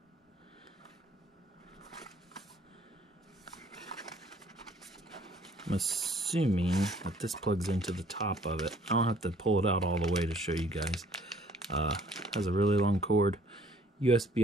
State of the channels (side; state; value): both; normal; correlation 0.59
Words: I'm assuming that this plugs into the top of it. I don't have to pull it out all the way to show you guys. Has a really long cord.